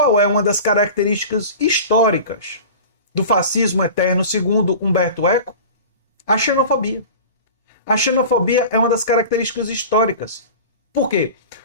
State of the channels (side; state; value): both; inverted; correlation -0.36